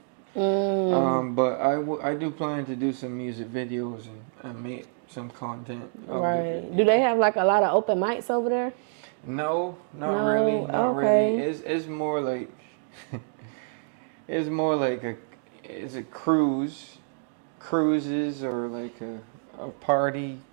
But I do plan to do some music videos and make some content. Right. Do they have like a lot of open mics over there? No, not No? really. Not Okay. really. It's more like it's more like it's a cruises, or like a party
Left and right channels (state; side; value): silent; left; 60 dB below the other